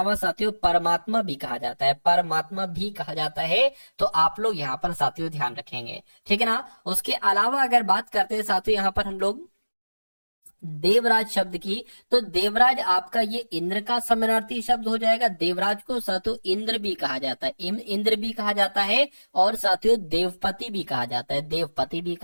साथियों परमात्मा भी कहा जाता है, परमात्मा भी कहा जाता है। तो आप लोग यहाँ पर साथियों ध्यान रखेंगे, ठीक है ना। उसके अलावा अगर बात करते हैं साथियों यहाँ पर हम लोग देवराज शब्द की, तो देवराज आपका ये इंद्र का समानार्थी शब्द हो जाएगा। देवराज को साथियों इंद्र भी कहा जाता है, इंद्र भी कहा जाता है और साथियों देवपति भी कहा जाता है, देवपति भी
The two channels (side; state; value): both; inverted; correlation -1.00